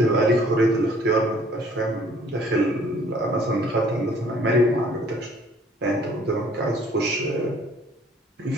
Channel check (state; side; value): normal; both; correlation 0.58